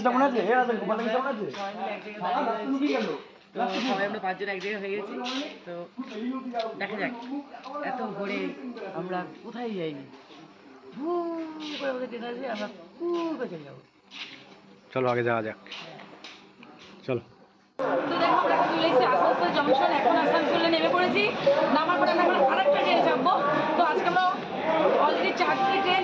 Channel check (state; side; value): identical; both; correlation 1.00